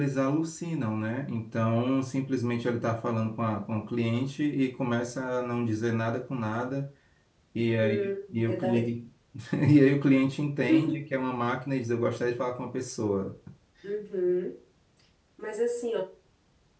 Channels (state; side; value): identical; both; correlation 1.00